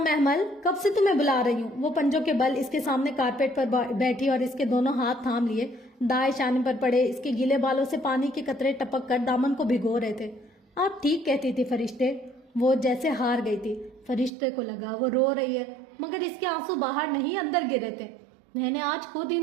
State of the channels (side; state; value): left; drops out; at 14.3 s